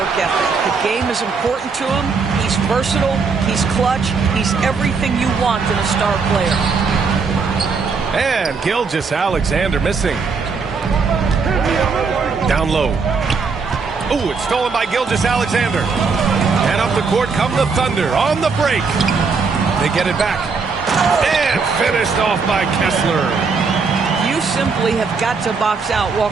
ethic. The game is important to him. He's versatile. He's clutch. He's everything you want in a star player. And Gilgeous-Alexander missing. Down low. Ooh, it's stolen by Gilgeous-Alexander. And up the court come the Thunder on the break. They get it back. And finished off by Kessler. You simply have got to box out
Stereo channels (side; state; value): left; quieter; 4.9 dB